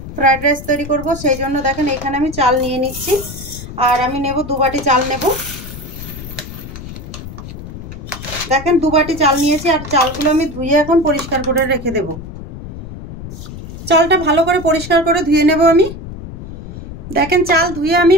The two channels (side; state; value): left; noise; rumble, 11 dB below the sound